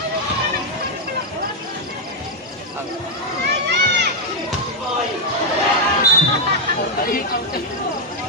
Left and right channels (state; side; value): normal; both; correlation 0.00